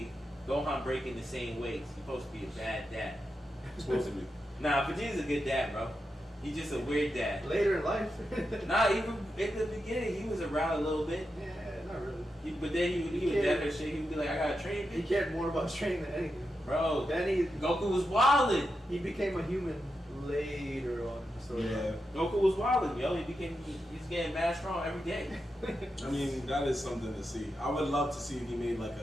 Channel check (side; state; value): both; normal; correlation 0.88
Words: Gohan breaking the same ways. He's supposed to be a bad dad. Supposed to be. Nah, Vegeta's a good dad, bro. He's just a weird dad. Later in life. Nah, even at the beginning, he was around a little bit. Yeah, not really. But then he was dead or shit. He would be like, I gotta train He bitch. cared more about training than anything. Bro, Then Goku was wildin'. he became a human later on in the story. Yeah. Goku was wildin', yo. He's getting mad strong every day. I mean, that is something to see. I would love to see if he made like